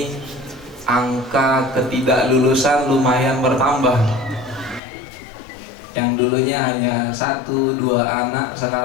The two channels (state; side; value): drops out; right; at 4.8 s